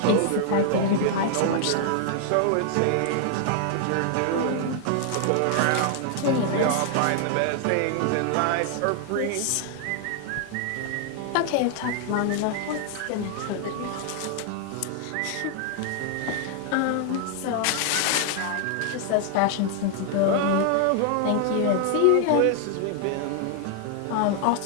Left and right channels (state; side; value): different; both; correlation 0.00